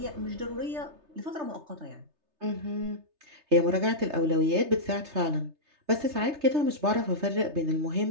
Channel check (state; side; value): late; left; 3.3 ms